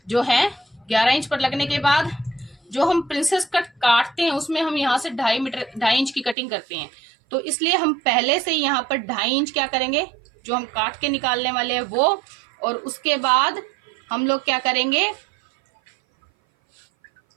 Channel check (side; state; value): left; drops out; at 6.4 s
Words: जो है 11 इंच पर लगने के बाद जो हम प्रिंसेस कट काटते हैं उसमें हम यहाँ से 2.5 इंच की कटिंग करते हैं। तो इसलिए हम पहले से यहाँ पर 2.5 इंच क्या करेंगे, जो हम काट के निकालने वाले हैं वो, और उसके बाद हम लोग क्या करेंगे